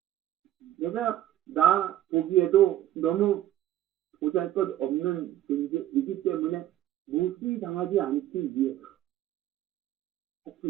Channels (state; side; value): quieter; left; 12.9 dB